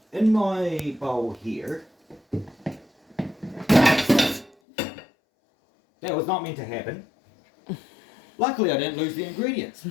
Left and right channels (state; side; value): drops out; right; at 4.5 s